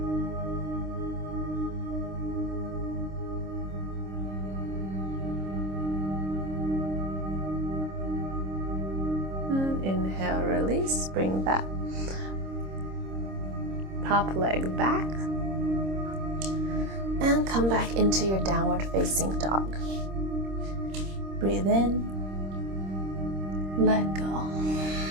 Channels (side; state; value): left; late; 26 ms